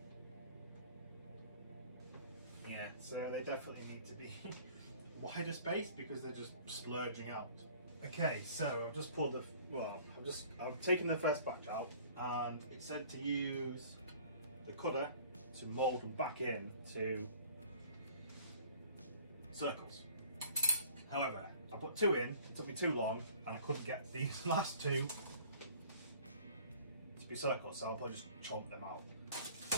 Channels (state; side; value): inverted; both; correlation -0.50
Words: Yeah, so they definitely need to be wider space because they're just splurging out. Okay, so I've just pulled I've taken the first batch out, and it said to use the cutter to mould them back in to circles. However, I put 2 in, it took me too long, and I couldn't get these last 2 to be circles, so I'll probably just chomp them out.